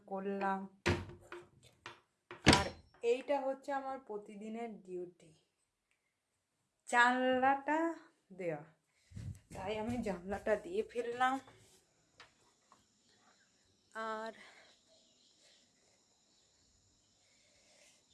করলাম। আর এইটা হচ্ছে আমার প্রতিদিনের ডিউটি, জানলাটা দেওয়া। তাই আমি জানলাটা দিয়ে ফেললাম। আর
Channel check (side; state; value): both; identical; correlation 1.00